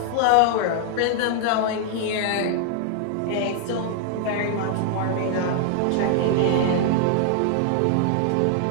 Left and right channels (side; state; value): both; different; correlation -0.01